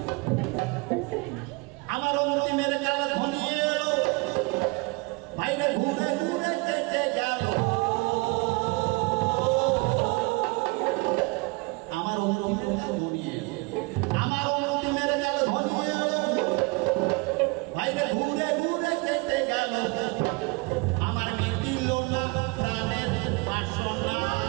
আমার অন্তিমের কাল ঘনিয়ে এলো, বাইরে ঘুরে ঘুরে কেটে গেল, আমার অন্তিমের কাল ঘনিয়ে এলো, আমার অন্তিমের কাল ঘনিয়ে এলো, বাইরে ঘুরে ঘুরে কেটে গেল, আমার মিটিল না প্রাণের বাসনা,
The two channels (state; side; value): quieter; left; 27.3 dB